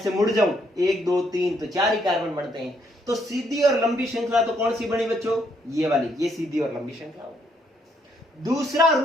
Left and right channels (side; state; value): both; normal; correlation 0.72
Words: मुड़ जाऊं 1 2 3 तो 4 ही कार्बन बनते हैं। तो सीधी और लंबी श्रृंखला तो कौन सी बनी बच्चों, ये वाली, ये सीधी और लंबी श्रृंखला हो। दूसरा